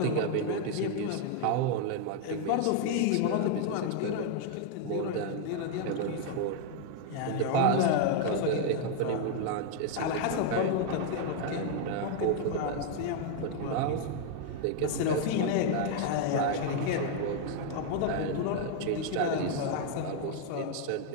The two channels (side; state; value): both; different; correlation 0.00